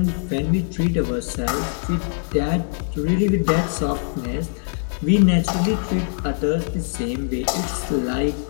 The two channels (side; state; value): right; silent; 64 dB below the other